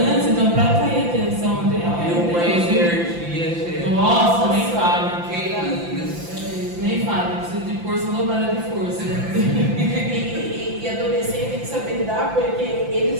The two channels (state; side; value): late; left; 5.8 ms